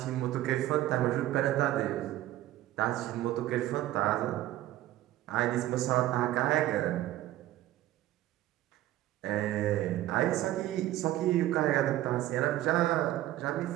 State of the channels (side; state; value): left; quieter; 14.6 dB